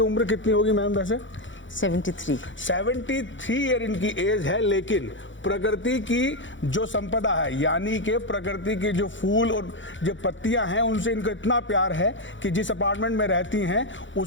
उम्र कितनी होगी मैम? वैसे 73 ईयर इनकी एज है, लेकिन प्रकृति की जो संपदा है, यानी कि प्रकृति की जो फूल और जो पत्तियां हैं, उनसे इनको इतना प्यार है कि जिस अपार्टमेंट में रहती हैं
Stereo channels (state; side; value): late; right; 0.55 ms